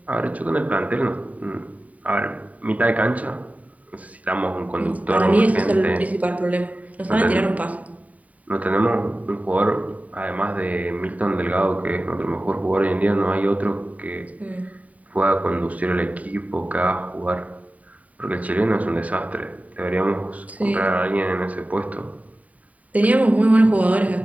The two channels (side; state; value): left; late; 0.070 ms